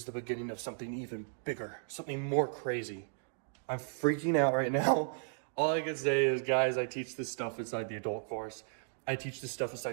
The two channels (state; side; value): silent; left; digital silence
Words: the beginning of something even bigger, something more crazy. I'm freaking out right now. All I can say is, guys, I teach this stuff inside the adult course. I teach this stuff